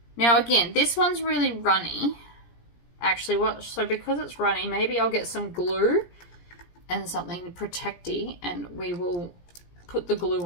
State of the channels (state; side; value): late; right; 17 ms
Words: Now again, this one's really runny. Actually, so because it's runny, maybe I'll get some glue and something protecty, and we will put the glue